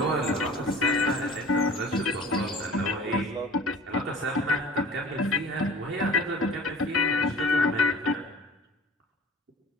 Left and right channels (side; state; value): both; normal; correlation 0.44